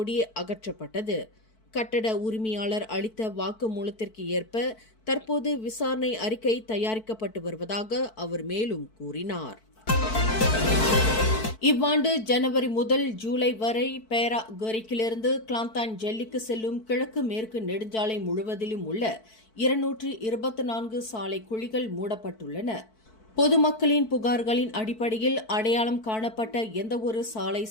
அகற்றப்பட்டது. கட்டட உரிமையாளர் அளித்த வாக்குமூலத்திற்கு ஏற்ப தற்போது விசாரணை அறிக்கை தயாரிக்கப்பட்டு வருவதாக அவர் மேலும் கூறினார். இவ்வாண்டு ஜனவரி முதல் ஜூலை வரை பேரா கரிக்கிலிருந்து கிளாந்தான் ஜெல்லிக்கு செல்லும் கிழக்கு மேற்கு நெடுஞ்சாலை முழுவதிலும் உள்ள 224 சாலை குழிகள் மூடப்பட்டுள்ளன. பொதுமக்களின் புகார்களின் அடிப்படையில் அடையாளம் காணப்பட்ட எந்தவொரு சாலை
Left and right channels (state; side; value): late; right; 4.6 ms